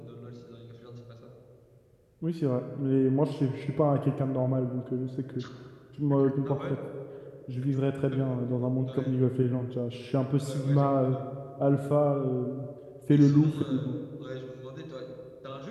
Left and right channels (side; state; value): both; identical; correlation 1.00